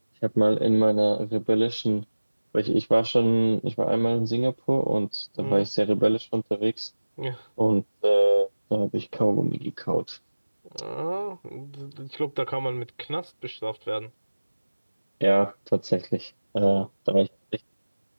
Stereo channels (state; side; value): inverted; both; correlation -1.00